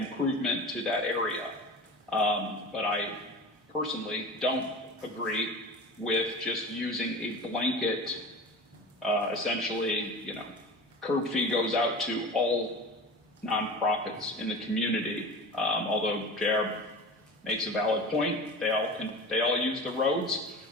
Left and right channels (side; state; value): both; normal; correlation 0.34